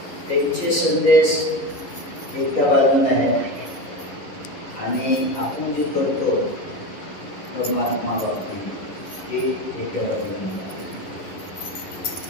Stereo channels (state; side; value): late; right; 11 ms